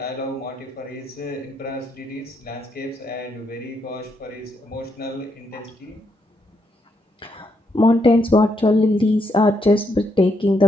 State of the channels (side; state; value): both; normal; correlation 0.78